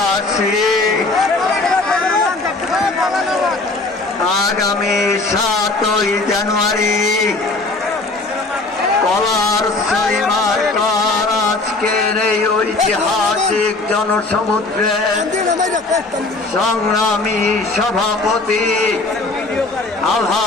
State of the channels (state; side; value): quieter; right; 3.3 dB